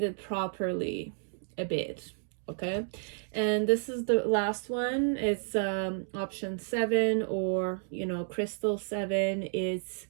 properly a bit. Okay, and this is the last one. It's option 7, or you know, crystal 7. It's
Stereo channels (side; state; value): left; silent; digital silence